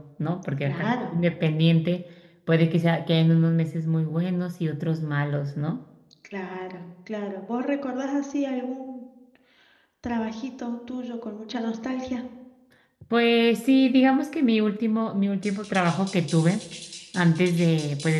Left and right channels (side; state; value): both; identical; correlation 1.00